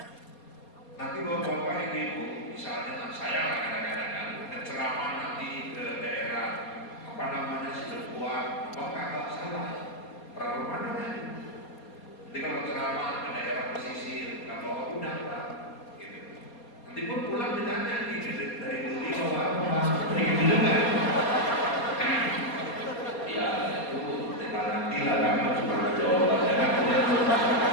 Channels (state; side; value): late; right; 4.3 ms